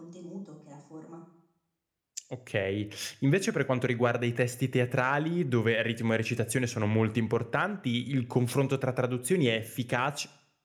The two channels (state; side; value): identical; both; correlation 1.00